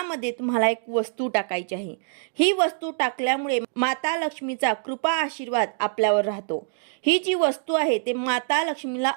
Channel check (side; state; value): left; silent; digital silence